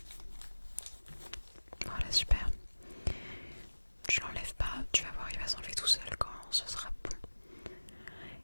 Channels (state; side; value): inverted; both; correlation -1.00